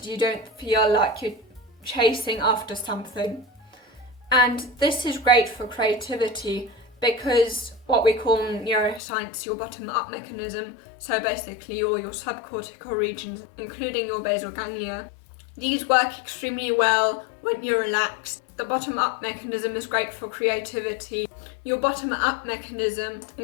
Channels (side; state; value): right; drops out; at 9.0 s